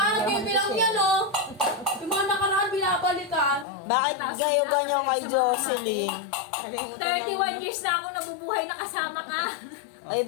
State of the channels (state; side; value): drops out; right; at 3.7 s